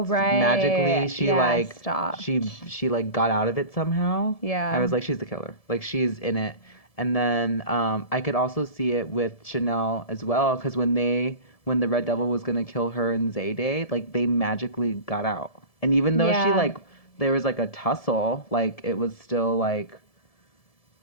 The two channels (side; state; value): right; late; 1.7 ms